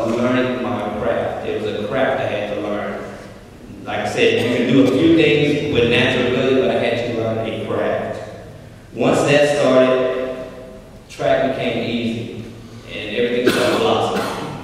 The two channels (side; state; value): both; identical; correlation 1.00